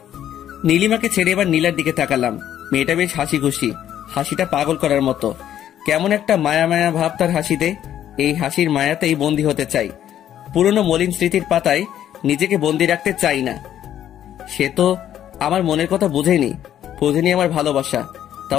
নীলিমাকে ছেড়ে এবার নীলার দিকে তাকালাম। মেয়েটা বেশ হাসি খুশি, হাসিটা পাগল করার মতো। কেমন একটা মায়া মায়া ভাব তার হাসিতে। এই হাসির মায়াতেই বন্দি হতে চাই। পুরনো মলিন স্মৃতির পাতায় নিজেকে বন্দি রাখতে চাই না। সে তো আমার মনের কথা বুঝেনি আমার ভালোবাসা।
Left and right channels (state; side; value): quieter; right; 10.9 dB